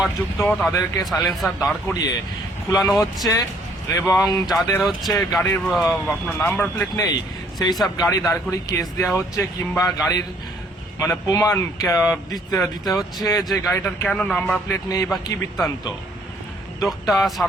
তাদেরকে সাইলেন্সার দাঁড় করিয়ে খুলানো হচ্ছে এবং যাদের হচ্ছে গাড়ির আপনার নাম্বার প্লেট নেই সেই সব গাড়ি দাঁড় করিয়ে কেস দেওয়া হচ্ছে কিংবা গাড়ির মানে প্রমাণ দিতে হচ্ছে যে গাড়িটার কেন নাম্বার প্লেট নেই বা কি বৃত্তান্ত। উদ্যোগটা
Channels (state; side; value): normal; both; correlation 0.63